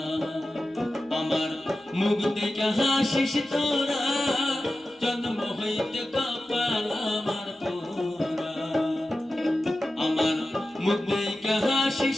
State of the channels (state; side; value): normal; both; correlation 0.94